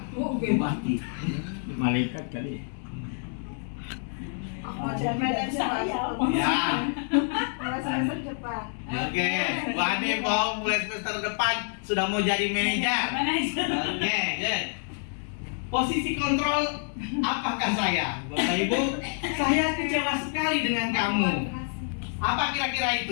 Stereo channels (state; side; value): silent; right; 59 dB below the other